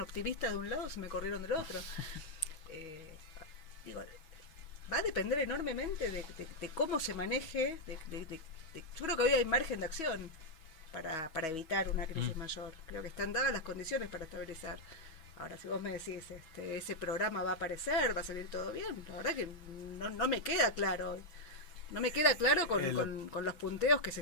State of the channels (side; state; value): right; late; 6.2 ms